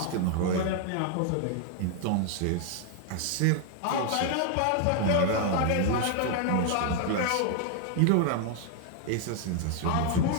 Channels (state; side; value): different; both; correlation 0.00